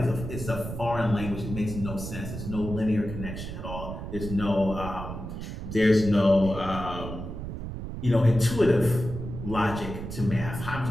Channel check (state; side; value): noise; right; rumble, 8 dB below the sound